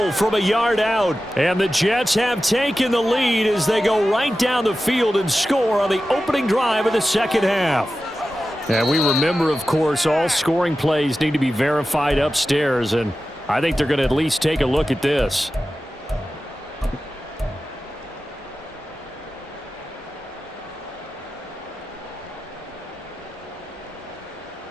from a yard out. And the Jets have taken the lead as they go right down the field and score on the opening drive of the second half. And we remember, of course, all scoring plays need to be verified upstairs, and I think they're going to at least take a look at this.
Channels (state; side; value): normal; both; correlation 0.94